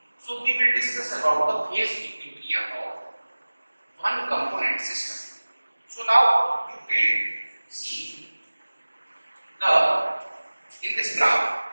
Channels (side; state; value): both; inverted; correlation -1.00